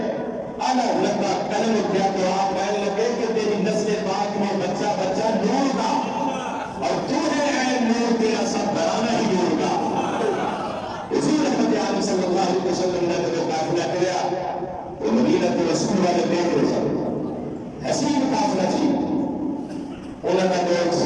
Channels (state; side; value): identical; both; correlation 1.00